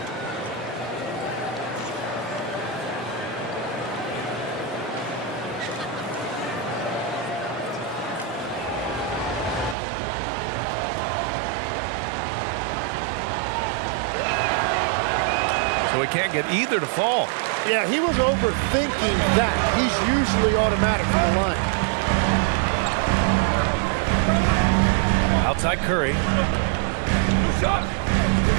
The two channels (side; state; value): left; drops out; at 9.8 s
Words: So he can't get either to fall. Yeah, he was overthinking that. He's usually automatic from the line. Outside Curry.